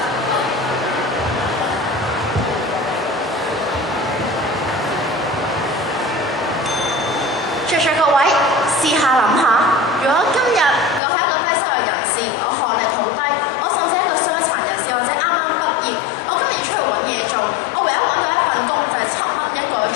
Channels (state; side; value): drops out; right; at 11.0 s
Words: 在座各位，試下諗下，如果今日我係一個低收入人士，我學歷好低，我甚至係一個傷殘人士或者啱啱畢業，我今日要出去揾嘢做，我唯一揾到一份工就係7蚊一個